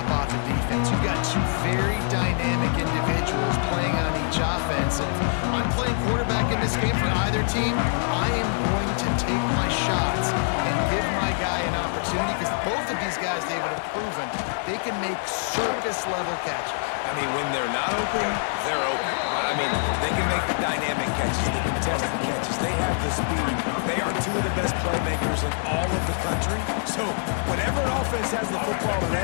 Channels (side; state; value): right; silent; digital silence